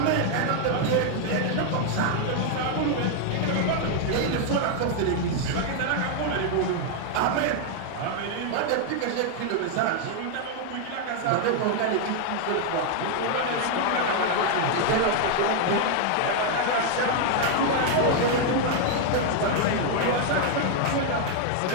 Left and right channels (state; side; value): different; both; correlation 0.00